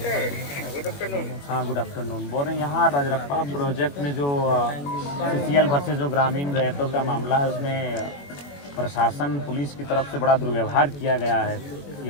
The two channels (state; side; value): late; right; 21 ms